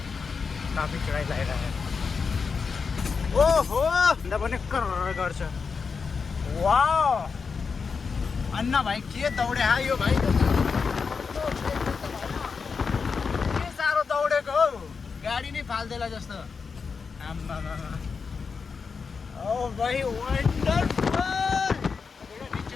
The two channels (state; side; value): quieter; right; 5.3 dB